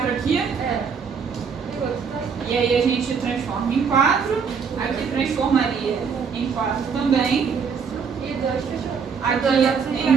aqui. É. E aí a gente transforma em 4. Aqui transformaria em 4 também. E 2 fechou. Aqui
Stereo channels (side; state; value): left; quieter; 6.1 dB